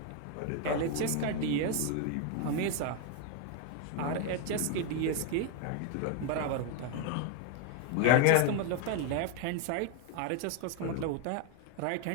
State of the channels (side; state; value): both; different; correlation 0.01